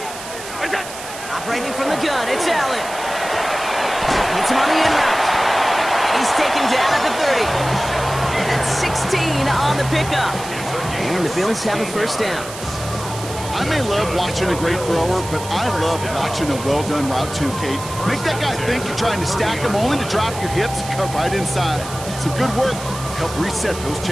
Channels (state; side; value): noise; right; hiss, 12 dB below the sound